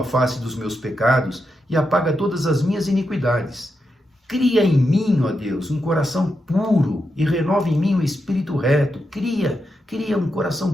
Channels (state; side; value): normal; both; correlation 0.85